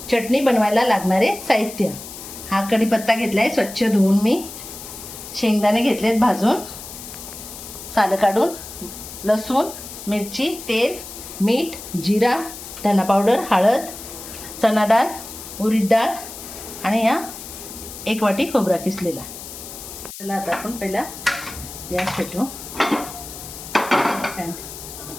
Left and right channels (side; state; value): left; noise; hiss, 12 dB below the sound